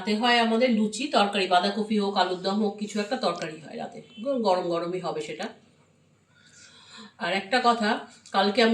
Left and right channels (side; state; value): both; identical; correlation 1.00